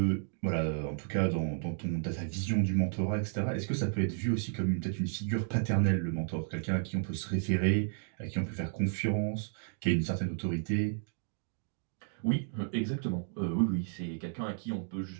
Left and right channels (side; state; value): left; silent; digital silence